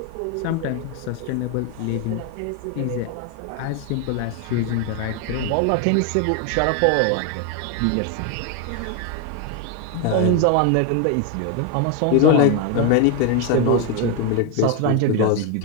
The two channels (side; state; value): both; different; correlation 0.01